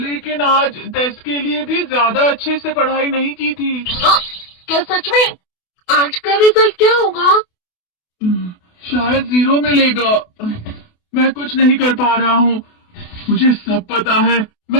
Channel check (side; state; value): right; late; 28 ms